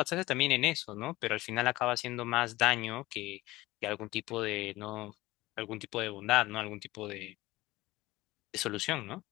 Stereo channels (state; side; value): quieter; right; 18.7 dB